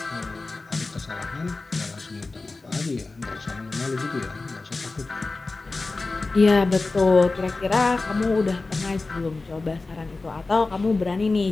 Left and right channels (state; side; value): quieter; right; 3.5 dB